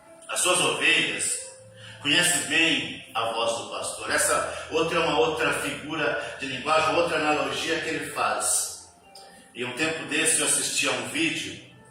as suas ovelhas conhecem bem a voz do pastor. Essa outra é uma outra figura de linguagem, outra analogia que ele faz. E um tempo desse eu assisti a um vídeo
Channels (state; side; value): identical; both; correlation 1.00